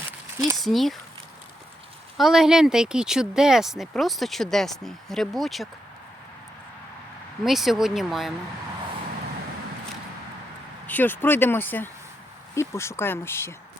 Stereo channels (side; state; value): both; normal; correlation 0.83